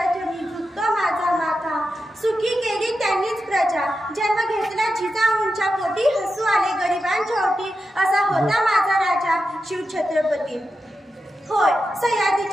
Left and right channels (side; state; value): both; normal; correlation 0.89